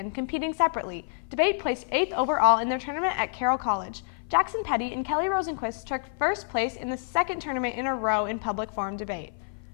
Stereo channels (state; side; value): silent; right; 56 dB below the other